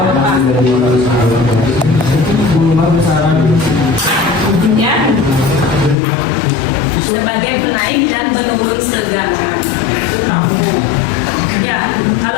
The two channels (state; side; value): drops out; right; at 6.0 s